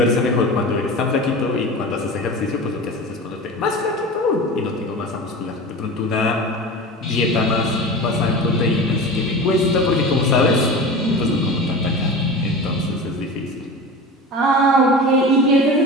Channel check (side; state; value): both; normal; correlation 0.32